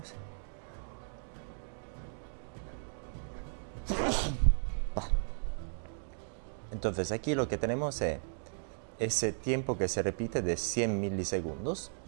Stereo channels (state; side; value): silent; left; digital silence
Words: es ese tiempo que se repite de 100 milisegundos